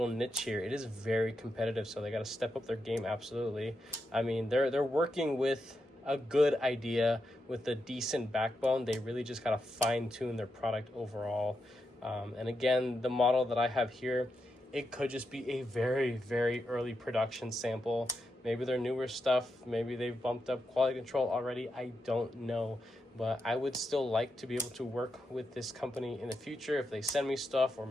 niche here, it is very competitive. So they got to step up their game. Absolutely. I mean, they're working with a good idea with a decent backbone. They really just got to fine tune their product overall. And again, the model that I have here, it could just be a very, very early production sample. Maybe they're newer stuff. Maybe they've bumped up quality control already. I don't know. But I would still like to be able to work with this company in the future if they send me stuff, or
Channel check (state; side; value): normal; both; correlation 0.85